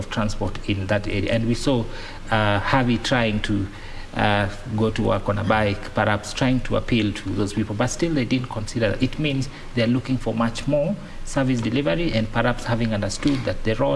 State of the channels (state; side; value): identical; both; correlation 1.00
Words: transport in that area. And we saw Harvey trying to go to work on a bike, perhaps trying to appeal to those people, but still they didn't consider that. It means they're looking for much more service delivery, and perhaps having understood that the